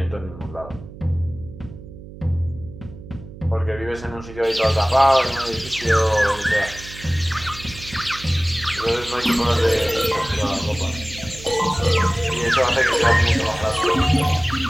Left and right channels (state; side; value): noise; right; hum, 15 dB below the sound